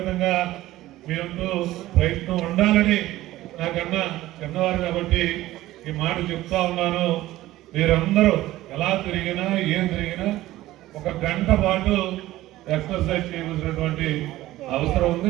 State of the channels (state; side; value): quieter; left; 16.0 dB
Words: మీరంటూ ప్రయత్నం ఉండాలని నాకన్నా చిన్నవారు కాబట్టి ఈ మాట చెప్తా ఉన్నాను. మీరందరూ ఎలా తిరిగినా ఏం తిరిగినా ఒక గంట పాటు ఎక్సర్సైజ్ చేయవలసినటువంటి అవసరం ఉంది.